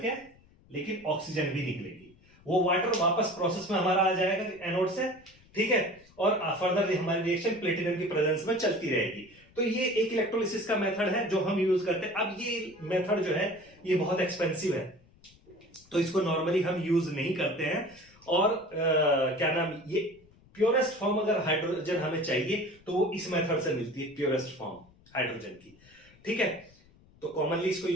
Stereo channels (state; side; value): noise; left; rumble, 28 dB below the sound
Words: के, लेकिन ऑक्सीजन भी निकलेगी, वो वाटर वापस प्रोसेस में हमारा आ जाएगा एनोड से। ठीक है, और फर्दर हमारी रिएक्शन प्लेटिनम की प्रेजेंस में चलती रहेगी। तो ये एक इलेक्ट्रोलिसिस का मेथड है जो हम यूज करते हैं। अब ये मेथड जो है ये बहुत एक्सपेंसिव है, तो इसको नॉर्मली हम यूज नहीं करते हैं। और क्या नाम, ये प्योरेस्ट फॉर्म अगर हाइड्रोजन हमें चाहिए तो वो इस मेथड से मिलती है, प्योरेस्ट फॉर्म हाइड्रोजन की। ठीक है, तो कॉमनली इसको